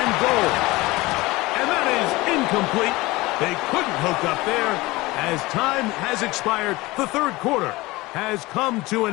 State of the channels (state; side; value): quieter; right; 21.0 dB